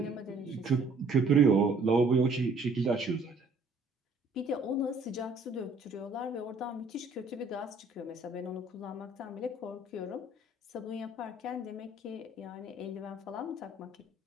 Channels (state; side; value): quieter; left; 3.1 dB